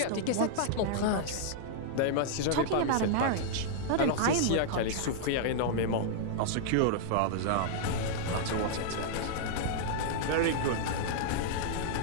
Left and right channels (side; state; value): both; different; correlation -0.01